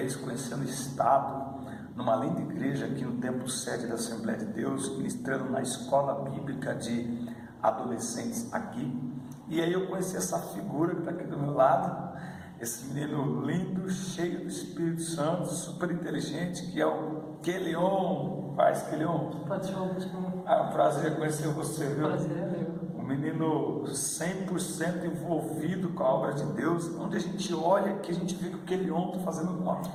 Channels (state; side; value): identical; both; correlation 1.00